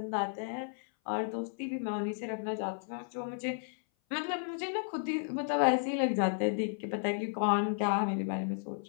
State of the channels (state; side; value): silent; right; 55 dB below the other